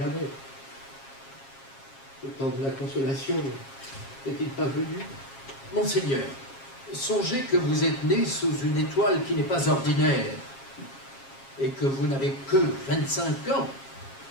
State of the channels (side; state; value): right; late; 7.4 ms